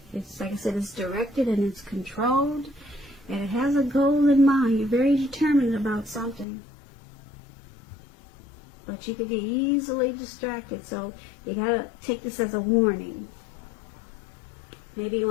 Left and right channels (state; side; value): drops out; right; at 6.5 s